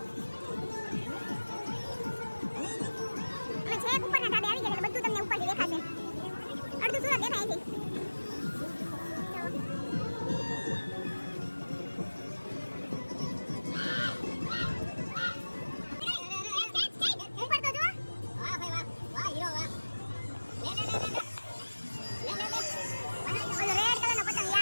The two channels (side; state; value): both; inverted; correlation -1.00